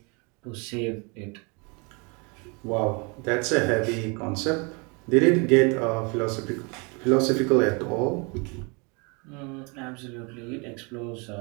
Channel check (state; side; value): quieter; left; 31.4 dB